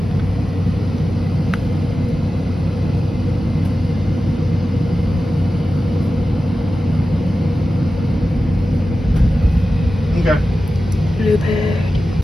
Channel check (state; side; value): normal; both; correlation 0.94